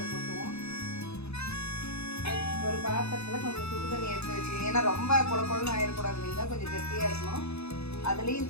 கொட்டுவோம். ஒரு பாத்திரத்தில் கொஞ்சம் சுடுதண்ணி எடுத்து வச்சுக்கோங்க. ஏன்னா ரொம்ப குழப்பம்னு ஆயிடக்கூடாது இல்லைங்களா, கொஞ்சம் கெட்டியாக இருக்கணும். அதுலேயும்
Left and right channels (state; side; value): late; right; 0.79 ms